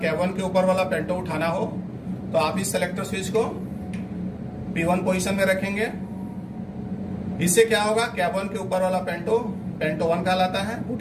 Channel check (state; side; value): identical; both; correlation 1.00